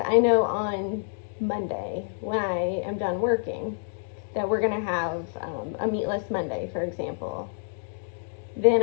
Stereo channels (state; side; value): silent; right; digital silence